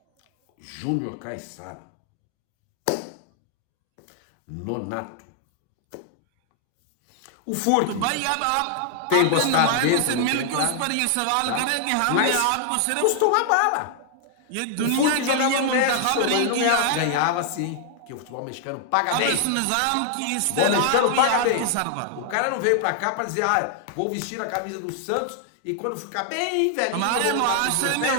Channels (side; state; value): both; different; correlation 0.00